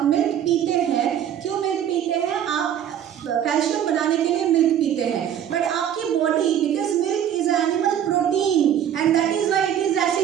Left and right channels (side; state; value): left; quieter; 9.9 dB